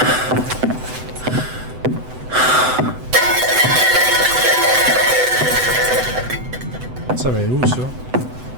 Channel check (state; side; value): late; left; 7.9 ms